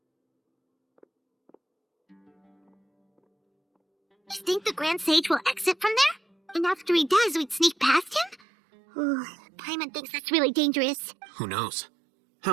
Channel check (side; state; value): left; drops out; at 8.4 s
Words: You think the Grand Sage will exit from there? And after he does, we'd sneak past him? Ooh, Paimon thinks that's really dangerous. Who knows?